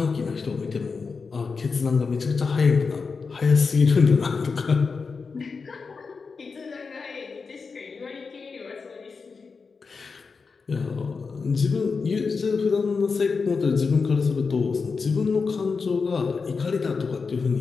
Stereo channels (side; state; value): right; quieter; 4.9 dB